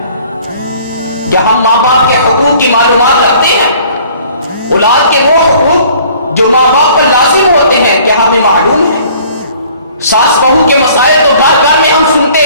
کیا ہم ماں باپ کے حقوق کی معلومات رکھتے ہیں؟ اولاد کے وہ حقوق جو ماں باپ پر لازم ہوتے ہیں کیا ہمیں معلوم ہے؟ ساس بہو کے مسائل تو گھر گھر میں ہم سنتے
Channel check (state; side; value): inverted; both; correlation -0.54